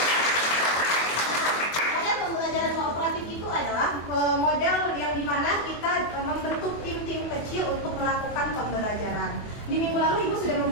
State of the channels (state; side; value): late; right; 24 ms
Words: Model pembelajaran kooperatif itu adalah model yang dimana kita membentuk tim-tim kecil untuk melakukan pembelajaran. Di minggu lalu Ibu sudah